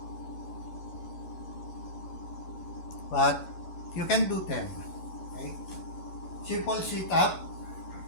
But you can do 10. Okay? Simple sit-up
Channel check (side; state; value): right; late; 11 ms